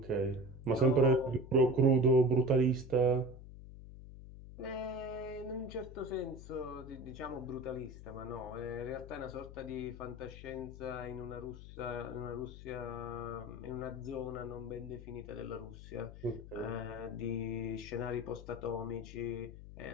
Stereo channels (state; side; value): noise; left; hum, 14 dB below the sound